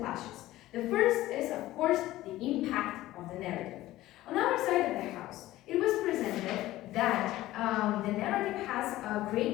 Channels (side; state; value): right; quieter; 16.0 dB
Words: The first is, of course, the impact of the narrative. On our side of the house, it was presented that the narrative has a